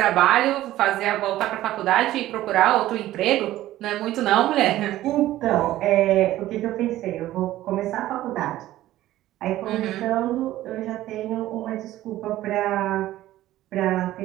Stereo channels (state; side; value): quieter; left; 14.7 dB